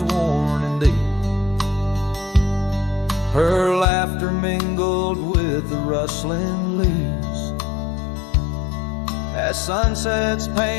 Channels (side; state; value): right; drops out; at 3.9 s